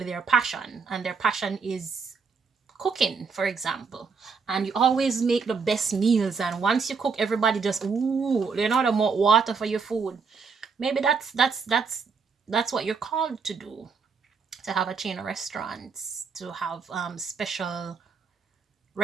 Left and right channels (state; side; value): quieter; left; 5.3 dB